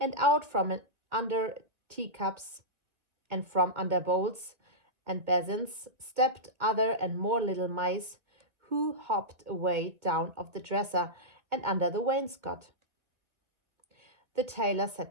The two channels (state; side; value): late; left; 1.7 ms